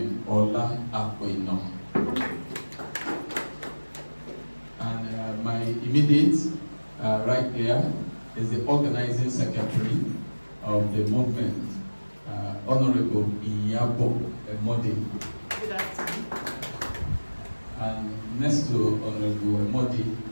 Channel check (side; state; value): both; inverted; correlation -1.00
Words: Ola Akpoino. And my immediate right there is the organizing secretary of the movement, Honorable Iyabo Emode. Good afternoon. And next to Honorable Emode